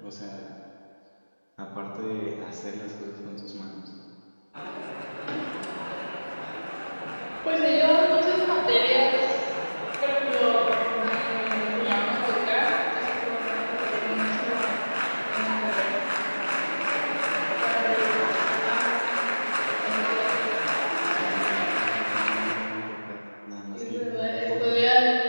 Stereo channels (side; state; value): both; inverted; correlation -1.00